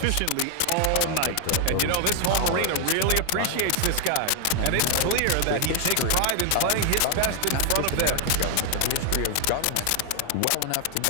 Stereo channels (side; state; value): both; different; correlation 0.00